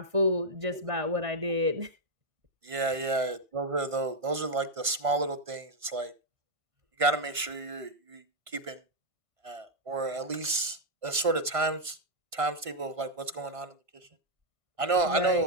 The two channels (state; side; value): late; left; 1.5 ms